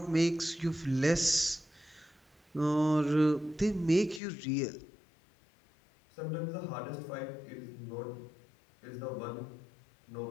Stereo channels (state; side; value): drops out; right; at 4.2 s